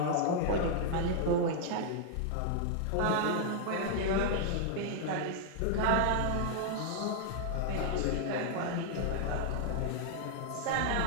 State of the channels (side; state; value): both; different; correlation 0.00